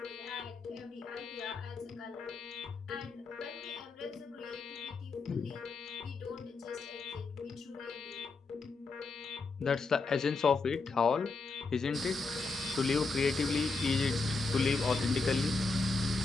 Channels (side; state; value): right; quieter; 4.0 dB